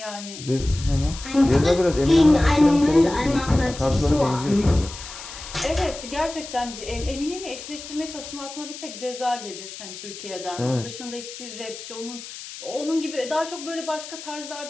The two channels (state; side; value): noise; left; hiss, 12 dB below the sound